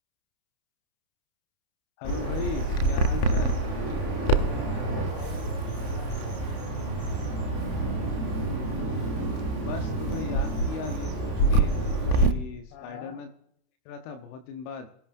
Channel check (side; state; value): right; late; 31 ms